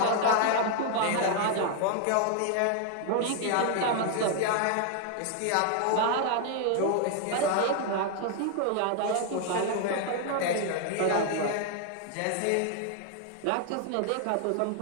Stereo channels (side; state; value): both; different; correlation 0.00